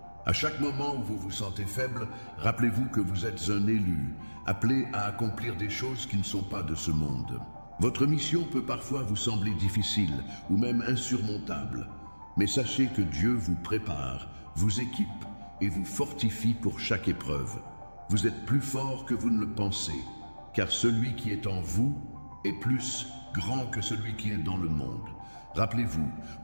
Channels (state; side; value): inverted; both; correlation -1.00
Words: À chaque moment où vous vous sentez faible, rappelez-vous que vous êtes un élu, appelé à accomplir des choses qui ne sont pas de ce monde. Votre mission peut parfois vous sembler difficile ou même insurmontable, mais sachez que Dieu vous prépare, vous équipe et vous fortifie pour chaque épreuve. Vous êtes plus fort que vous ne le pensez, car celui qui est en vous est plus grand que celui qui est dans le monde. Rappelez-vous,